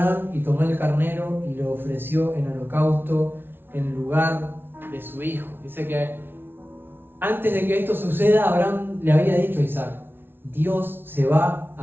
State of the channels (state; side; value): late; left; 0.11 ms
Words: y tomó el carnero y lo ofreció en holocausto en lugar de su hijo. Dice que antes de que esto suceda, Abraham le había dicho a Isaac, Dios se va